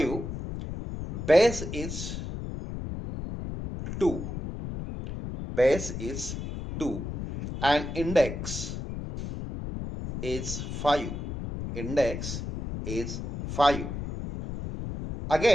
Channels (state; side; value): noise; left; rumble, 6 dB below the sound